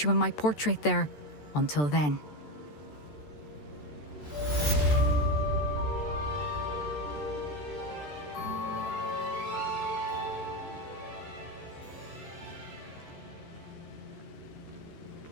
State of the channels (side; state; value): right; late; 14 ms